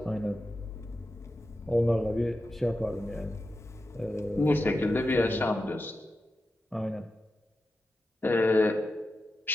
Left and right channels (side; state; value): both; normal; correlation 0.91